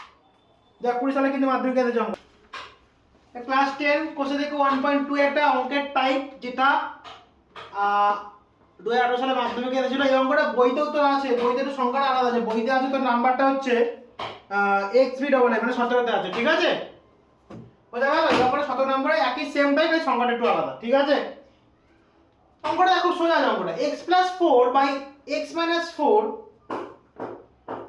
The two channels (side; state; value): both; identical; correlation 1.00